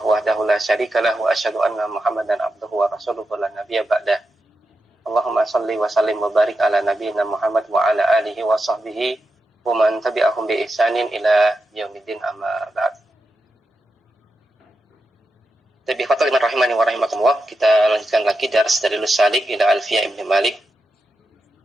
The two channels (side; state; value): both; normal; correlation 0.88